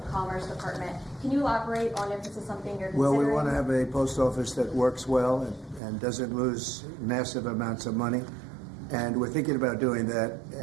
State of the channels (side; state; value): left; drops out; at 5.8 s